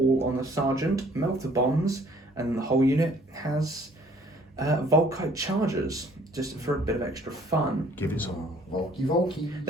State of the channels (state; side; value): normal; both; correlation 0.58